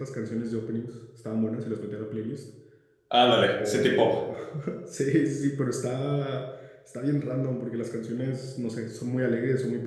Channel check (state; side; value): identical; both; correlation 1.00